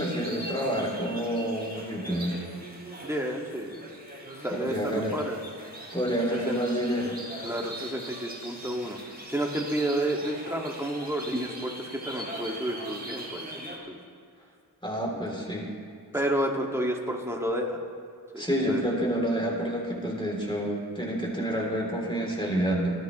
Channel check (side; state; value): both; normal; correlation 0.52